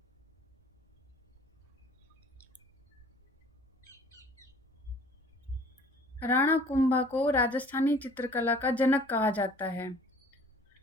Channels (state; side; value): normal; both; correlation 0.52